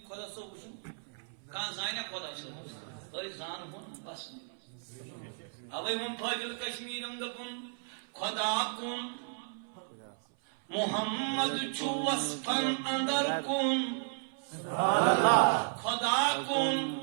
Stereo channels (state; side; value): silent; left; 55 dB below the other